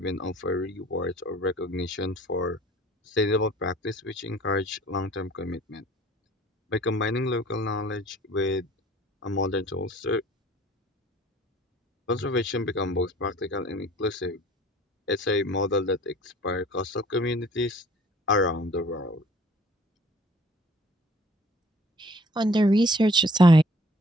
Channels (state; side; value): normal; both; correlation 0.53